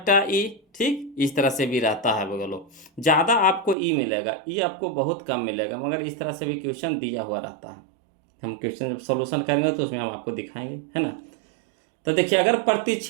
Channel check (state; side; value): drops out; left; at 3.8 s